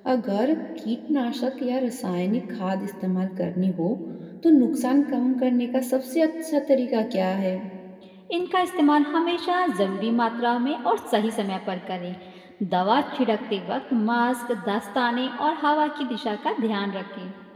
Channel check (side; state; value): both; identical; correlation 1.00